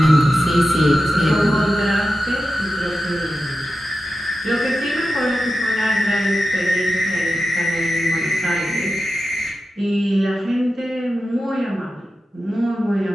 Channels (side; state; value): both; normal; correlation 0.92